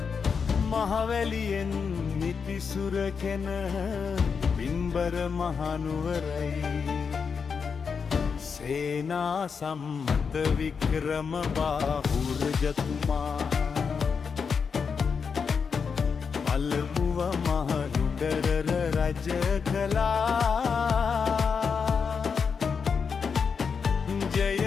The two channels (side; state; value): right; quieter; 5.9 dB